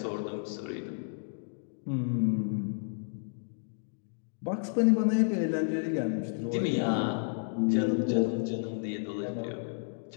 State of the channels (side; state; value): right; silent; digital silence